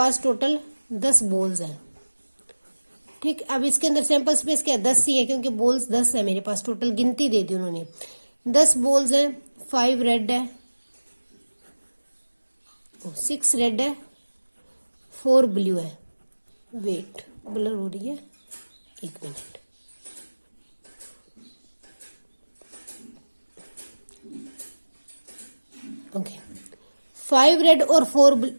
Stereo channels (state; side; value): inverted; both; correlation -1.00